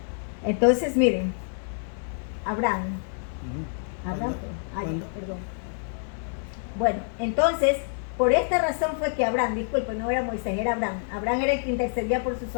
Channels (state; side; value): silent; right; digital silence